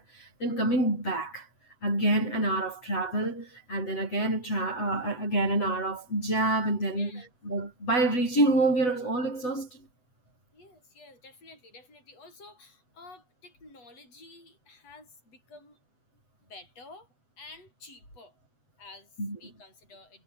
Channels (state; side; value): late; right; 8.0 ms